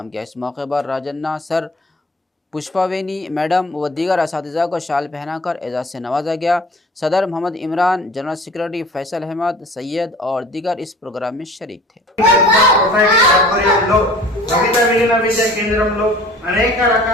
किया। इस मौके पर राजन्ना सर पुष्पावेनी मैडम व दीगर असातिज़ा को शाल पहनाकर एजाज़ से नवाजा गया। सदर मोहम्मद इमरान, जनरल सेक्रेटरी फैसल अहमद, सैयद और दीगर इस प्रोग्राम में शरीक थे। అనేక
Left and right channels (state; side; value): normal; both; correlation 0.46